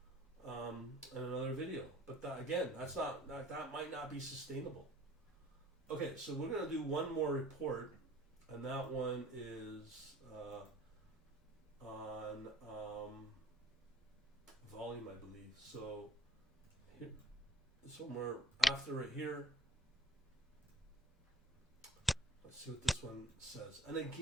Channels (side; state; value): both; normal; correlation 0.53